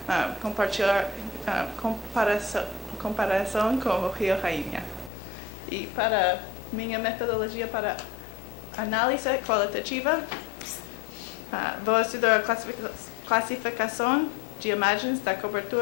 compartilhar comparação com o Rio Rainha. E para minha metodologia para análise qualitativa, vou estudar a classificação de imagens da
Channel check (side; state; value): right; drops out; at 5.1 s